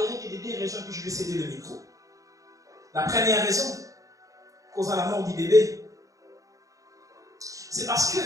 que des deux raisons que je vais céder le micro. La première raison causant la mort du bébé, c'est parce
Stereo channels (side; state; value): left; late; 0.16 ms